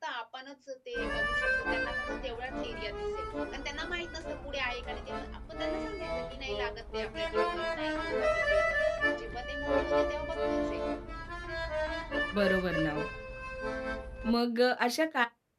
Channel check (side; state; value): both; identical; correlation 1.00